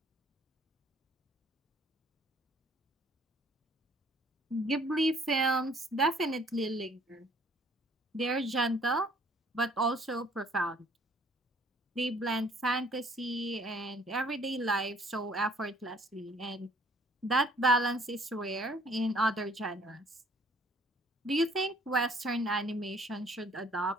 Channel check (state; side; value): normal; both; correlation 0.59